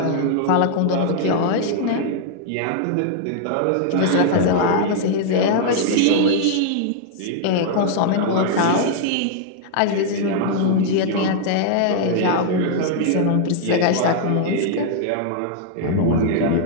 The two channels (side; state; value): both; different; correlation -0.01